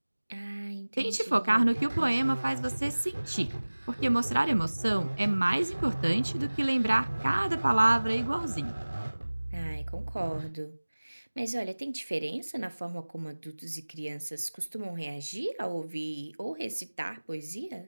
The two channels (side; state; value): both; inverted; correlation -1.00